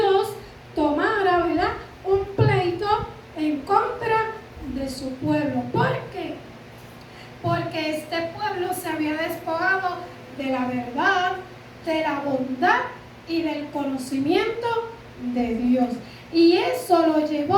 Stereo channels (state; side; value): identical; both; correlation 1.00